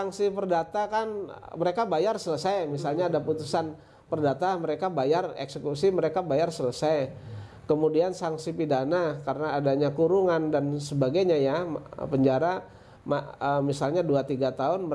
perdata kan mereka bayar selesai, misalnya ada putusan perdata, mereka bayar eksekusi, mereka bayar selesai. Kemudian sanksi pidana karena adanya kurungan dan sebagainya ya, penjara misalnya 2-3 tahun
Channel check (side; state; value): both; identical; correlation 1.00